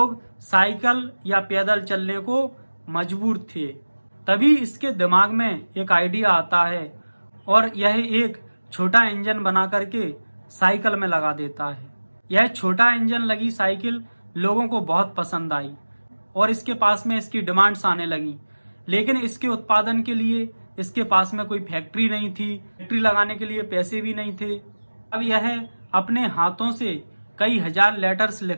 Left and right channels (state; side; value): inverted; both; correlation -1.00